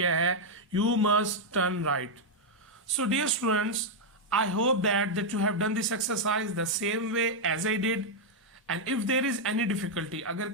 है you must turn right. So dear students, I hope that you have done this exercise the same way as I did. And if there is any difficulty, अगर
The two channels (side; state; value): both; normal; correlation -0.02